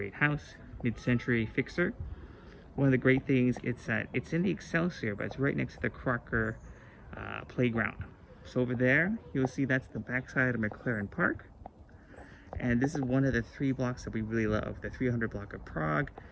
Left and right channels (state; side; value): identical; both; correlation 1.00